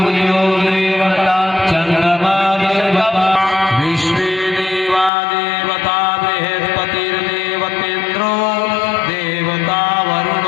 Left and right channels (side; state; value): right; drops out; at 5.1 s